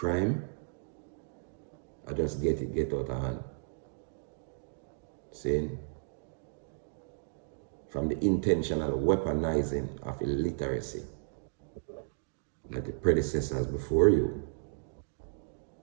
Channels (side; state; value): left; silent; digital silence